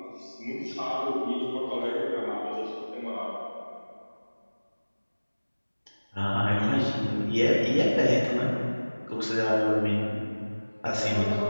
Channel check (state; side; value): inverted; both; correlation -1.00